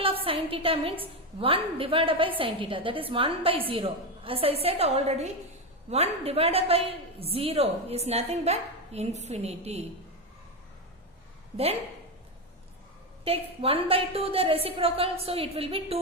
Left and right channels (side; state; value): both; normal; correlation 0.12